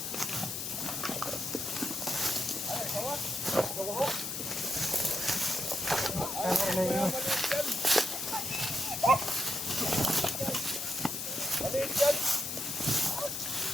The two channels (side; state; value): left; noise; hiss, 4 dB below the sound